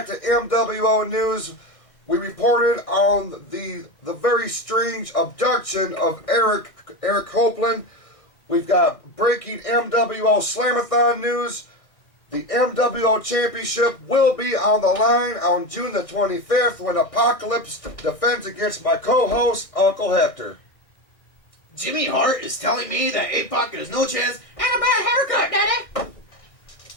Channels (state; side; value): late; right; 1.6 ms